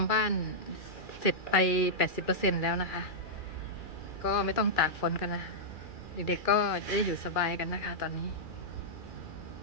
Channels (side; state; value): right; late; 2.4 ms